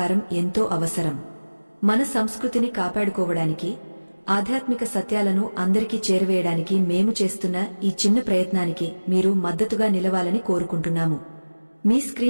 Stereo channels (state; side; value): inverted; both; correlation -1.00